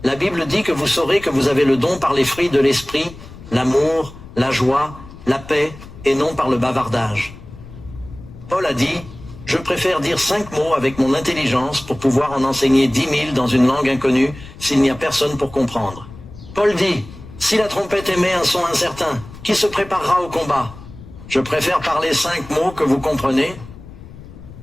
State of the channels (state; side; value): noise; left; rumble, 17 dB below the sound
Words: La Bible dit que vous saurez que vous avez le don par les fruits de l'Esprit, l'amour, la joie, la paix, et non par le bavardage. Paul a dit « Je préfère dire 5 mots avec mon intelligence pour pouvoir en enseigner 10 000 dans une langue inconnue s'il n'y a personne pour comprendre. » Paul dit « Si la trompette émet un son incertain, qui se préparera au combat? Je préfère parler 5 mots que vous comprenez.